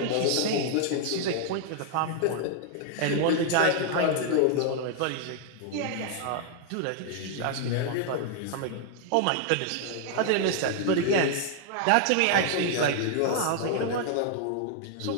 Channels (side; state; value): both; different; correlation 0.00